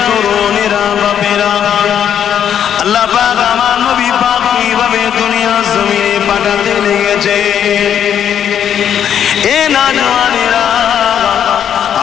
তরুণেরা, বাপেরা, আল্লাহ পাক আমার নবী পাক কিভাবে দুনিয়া জমিনে পাঠাতে লেগেছে। এ নওজওয়ানেরা,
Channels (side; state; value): right; quieter; 9.1 dB